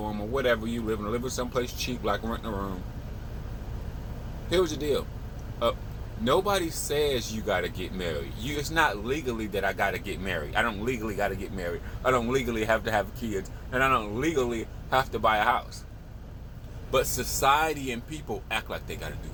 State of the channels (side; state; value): both; identical; correlation 1.00